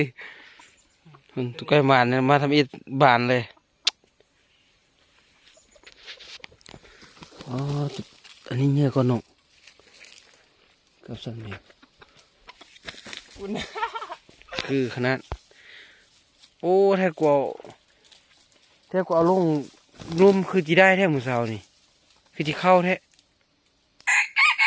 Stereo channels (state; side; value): identical; both; correlation 1.00